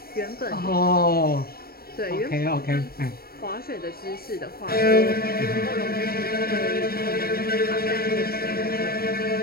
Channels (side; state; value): right; late; 0.44 ms